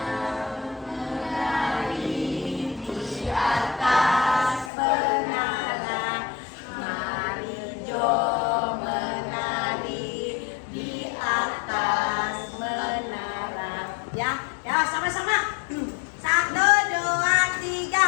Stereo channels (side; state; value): right; drops out; at 4.7 s